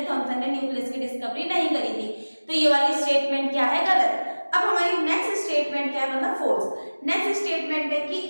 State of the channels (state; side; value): inverted; both; correlation -1.00